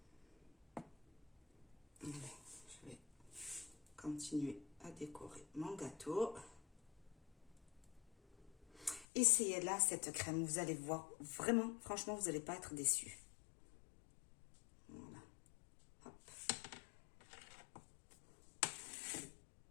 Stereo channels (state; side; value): drops out; right; at 9.1 s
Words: Allez, je vais continuer à décorer mon gâteau. Essayez là cette crème, vous allez voir, vraiment, franchement, vous n'allez pas être déçus. Voilà. Hop.